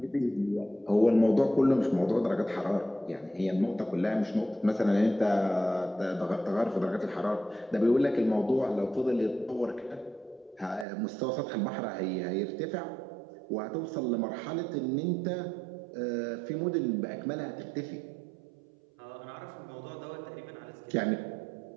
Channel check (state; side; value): drops out; left; at 10.9 s